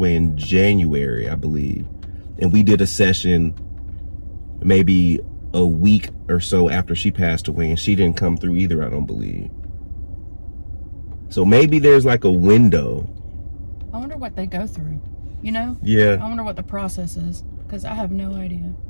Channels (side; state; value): both; inverted; correlation -1.00